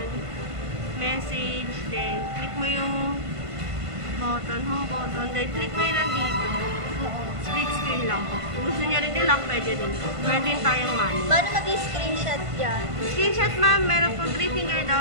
message, then click mo yung button, home button, then click mo yun nandito. Split screen lang po. Kung gusto niyo rin nila, pwede rin po. Meron din tayong manual. Paano mag-screenshot dyan? Screenshot ma'am, meron po 3 finger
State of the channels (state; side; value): late; left; 1.5 ms